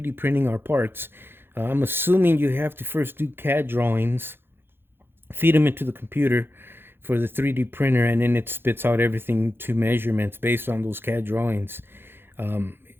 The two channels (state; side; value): late; left; 0.10 ms